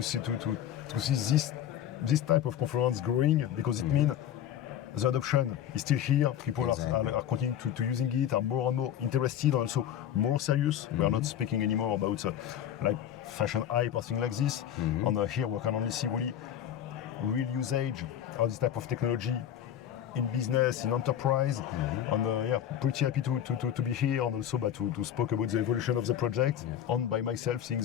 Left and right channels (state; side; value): quieter; right; 10.4 dB